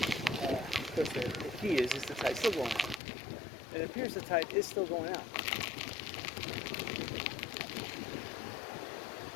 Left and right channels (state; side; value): drops out; right; at 3.0 s